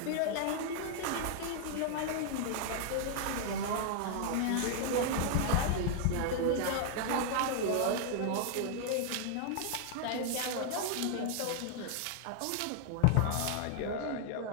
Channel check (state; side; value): different; both; correlation -0.01